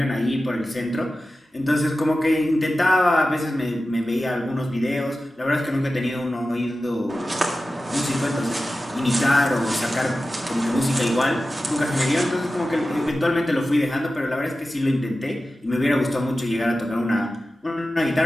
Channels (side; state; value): both; normal; correlation 0.94